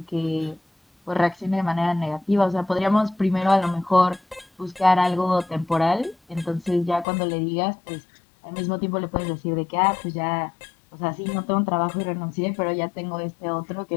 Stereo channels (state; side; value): drops out; right; at 7.1 s